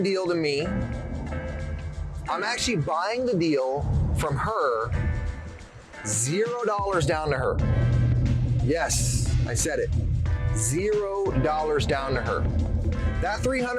deal to me. I'm actually buying the deal from her, $0 down to her. Yes, I said it, $0 down to her. That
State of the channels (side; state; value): both; identical; correlation 1.00